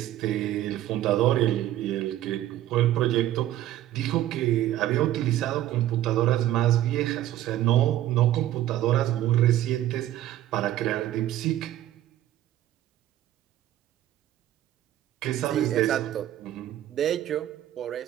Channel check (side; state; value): left; quieter; 13.2 dB